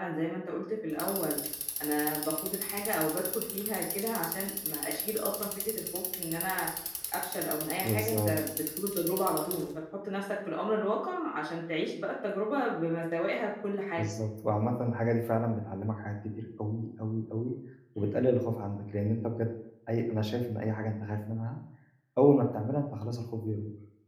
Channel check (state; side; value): identical; both; correlation 1.00